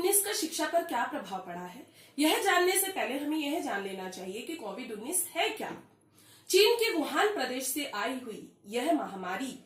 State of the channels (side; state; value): both; identical; correlation 1.00